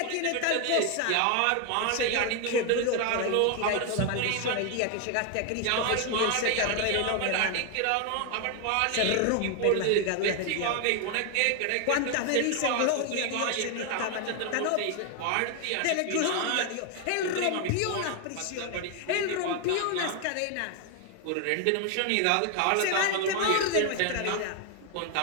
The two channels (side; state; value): both; different; correlation 0.01